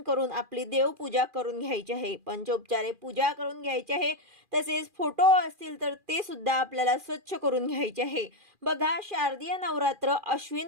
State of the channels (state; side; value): late; left; 2.4 ms